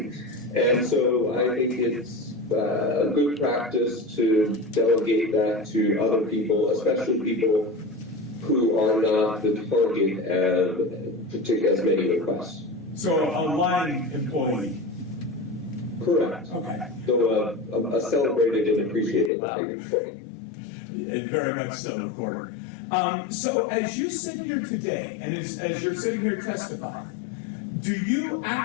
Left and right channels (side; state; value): right; drops out; at 19.3 s